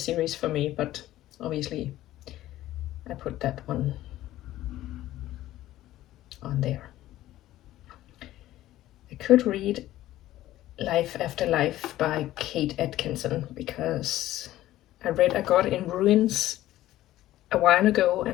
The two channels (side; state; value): right; quieter; 14.7 dB